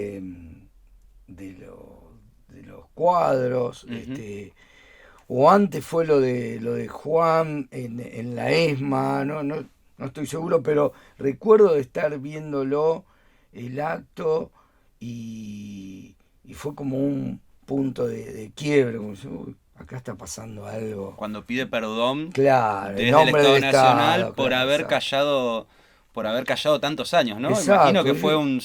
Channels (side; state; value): both; identical; correlation 1.00